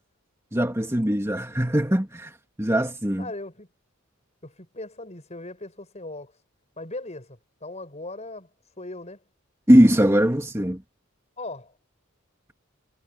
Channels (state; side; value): normal; both; correlation 0.92